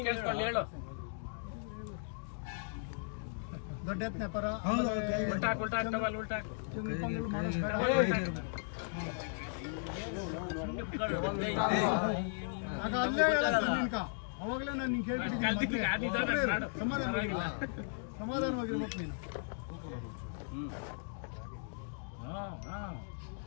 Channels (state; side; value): silent; right; digital silence